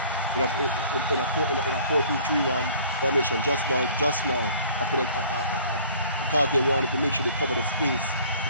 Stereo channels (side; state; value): both; inverted; correlation -0.52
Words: in a 4-2-3-1 formation just now after that, because they wanted to make sure they cover the space